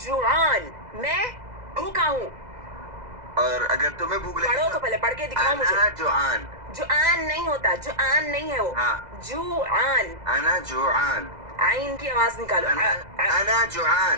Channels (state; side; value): late; left; 2.0 ms